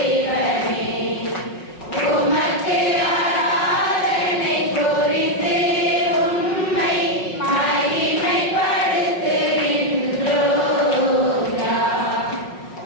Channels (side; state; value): right; late; 5.5 ms